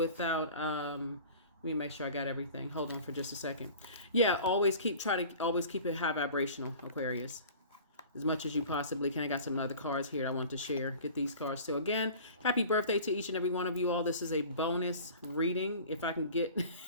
let me make sure I got everything. Hold on for just a second. Yeah, try to always keep it high vibrational, Aquarius, as much as you possibly can. I got some other cards here I want to share. Get these cards too. Again, happy birthday to each and every one of you all. This is a bonus reading. If I can get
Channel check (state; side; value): inverted; both; correlation -0.43